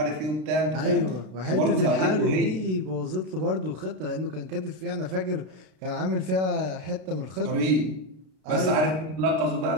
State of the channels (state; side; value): late; left; 32 ms